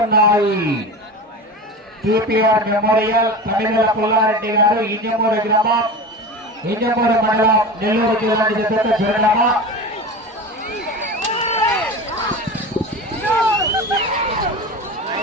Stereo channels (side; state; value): both; normal; correlation 0.29